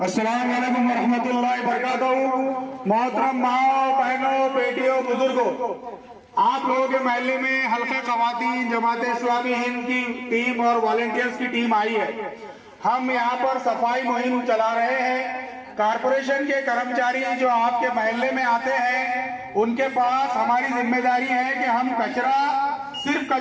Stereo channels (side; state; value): both; identical; correlation 1.00